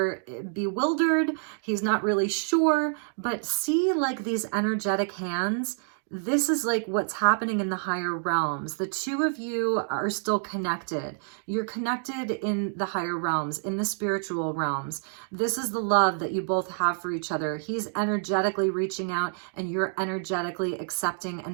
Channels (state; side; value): silent; left; digital silence